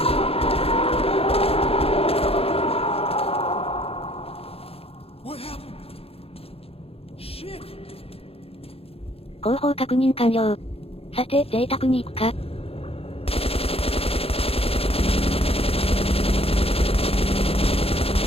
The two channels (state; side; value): late; right; 0.28 ms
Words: What happened? Shit! 後方確認完了。さて、贅沢に行くか。